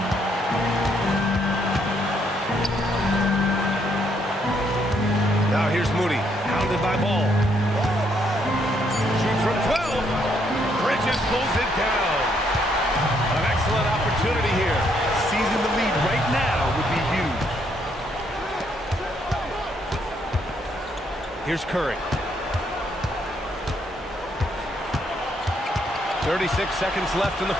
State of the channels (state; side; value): normal; both; correlation 0.72